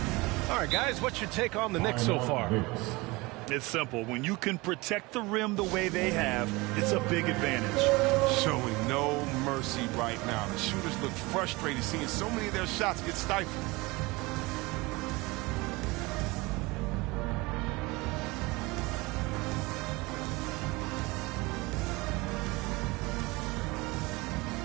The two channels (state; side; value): quieter; left; 23.3 dB